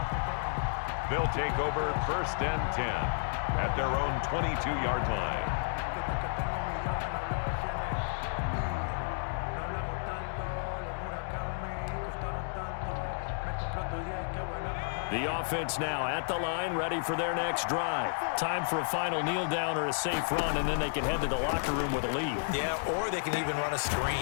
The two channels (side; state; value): right; silent; digital silence